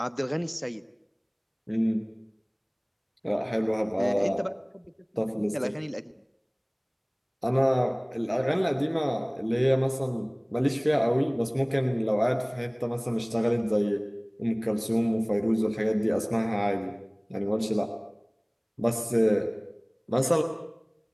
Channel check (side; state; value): both; identical; correlation 1.00